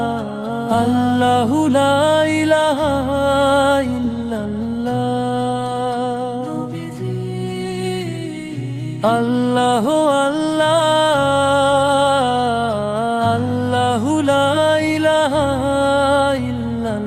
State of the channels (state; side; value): identical; both; correlation 1.00